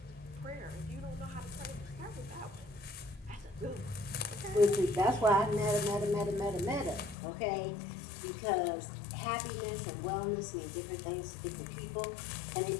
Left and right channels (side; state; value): right; drops out; at 7.2 s